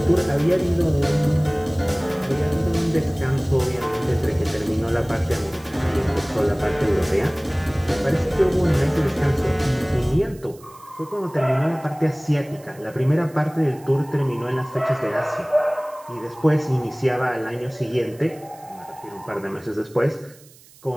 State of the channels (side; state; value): right; noise; hiss, 25 dB below the sound